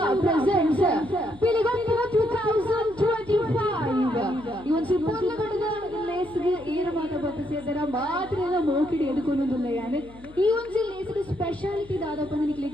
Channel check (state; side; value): noise; left; hum, 22 dB below the sound